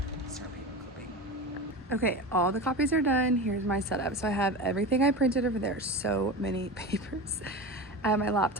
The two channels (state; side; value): normal; both; correlation 0.27